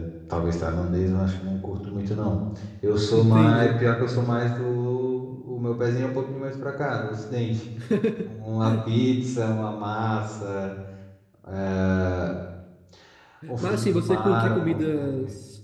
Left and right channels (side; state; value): both; identical; correlation 1.00